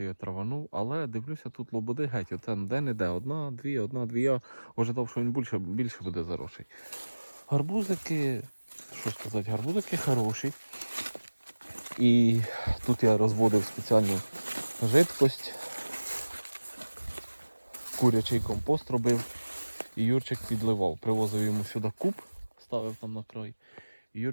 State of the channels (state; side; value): inverted; both; correlation -1.00